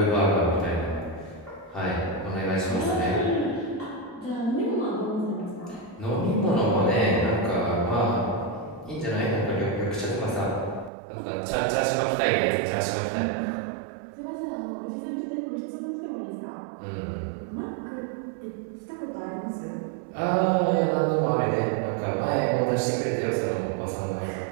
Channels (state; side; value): drops out; left; at 10.9 s